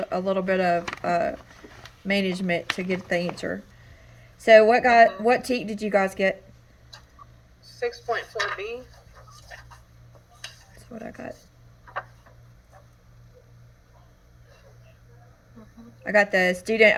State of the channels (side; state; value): both; identical; correlation 1.00